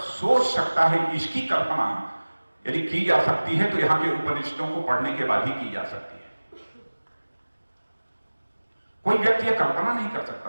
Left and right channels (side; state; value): both; inverted; correlation -1.00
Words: सकता है, इसकी कल्पना यदि की जा सकती है तो यहां के उपनिषदों को पढ़ने के बाद ही की जा सकती है। कोई व्यक्ति यह कल्पना नहीं कर